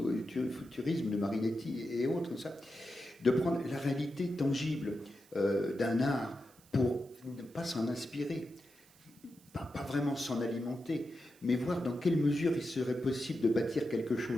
futurisme de Marinetti et autres, ça, de prendre la réalité tangible d'un art pour ne pas s'en inspirer. pas vraiment s'en alimenter, mais voir dans quelle mesure il serait possible de bâtir quelque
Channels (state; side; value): noise; right; hiss, 27 dB below the sound